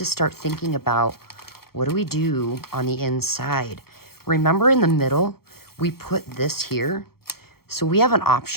start thinking about what do we do on the inside. Remember in the middle, we put this here. So we have an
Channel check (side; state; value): right; late; 0.94 ms